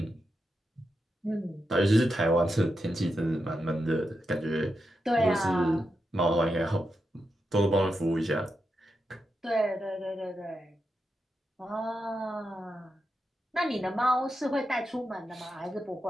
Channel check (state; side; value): normal; both; correlation 0.87